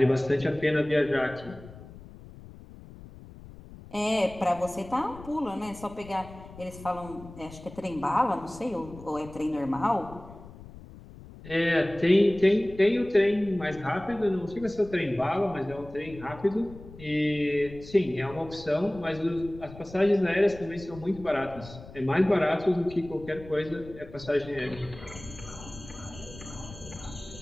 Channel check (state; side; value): noise; left; rumble, 17 dB below the sound